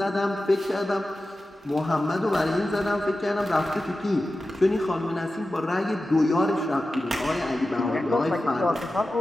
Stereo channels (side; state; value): both; normal; correlation 0.94